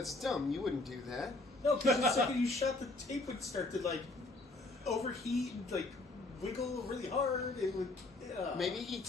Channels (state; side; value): quieter; right; 3.0 dB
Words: dumb. You wouldn't do that. No, because the second you shot, the tape would start to like overheat and like wiggle really hard. It would. Maybe he